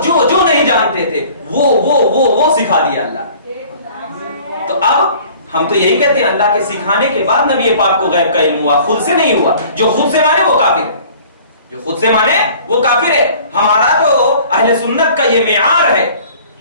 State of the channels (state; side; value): inverted; both; correlation -0.50